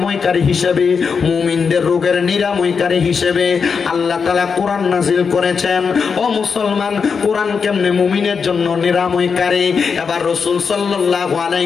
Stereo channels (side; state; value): right; quieter; 5.7 dB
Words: হিসেবে, মুমিনদের রোগের নিরাময়কারী হিসেবে আল্লাহ তাআলা কোরআন নাজিল করেছেন। ও মুসলমান, কোরআন কেমনে মুমিনের জন্য নিরাময়কারী? এবার রাসূল সাল্লাল্লাহু